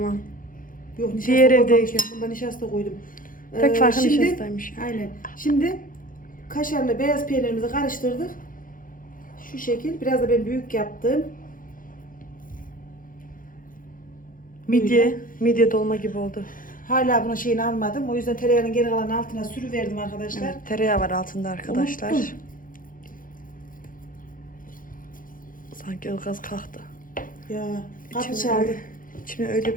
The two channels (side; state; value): right; late; 0.40 ms